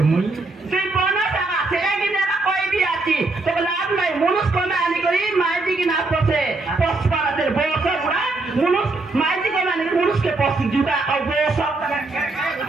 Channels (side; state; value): left; quieter; 3.3 dB